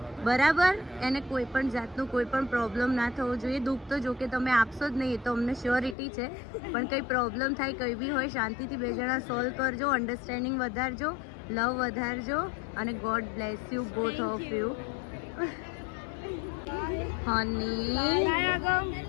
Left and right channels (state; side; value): drops out; right; at 6.0 s